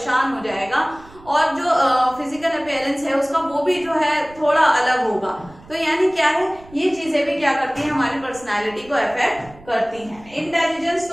हो जाएगा, और जो फिजिकल अपीयरेंस है उसका वो भी जो है थोड़ा अलग होगा। तो यानी क्या है, ये चीजें भी क्या करती हैं, हमारी पर्सनालिटी को अफेक्ट करती हैं। इंटेलिजेंस,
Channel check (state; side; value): noise; right; rumble, 23 dB below the sound